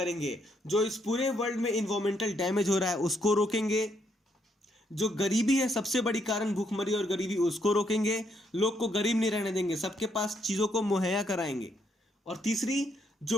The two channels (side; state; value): both; normal; correlation 0.74